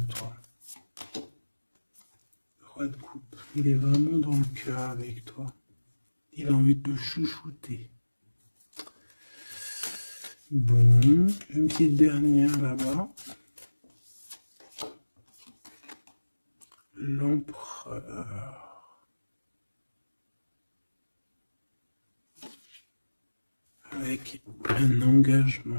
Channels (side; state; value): both; inverted; correlation -1.00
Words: Roi de coupe. Il est vraiment dans le cœur avec toi. Il a envie de te chouchouter. Bon, une petite dernière là-bas. L'empereur. Avec un